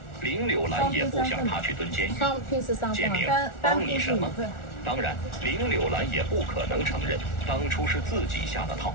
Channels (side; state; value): right; late; 1.4 ms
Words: 林柳兰也不想他去蹲监狱。建明，帮你什么？当然，林柳兰也不可能承认当初是自己下的套，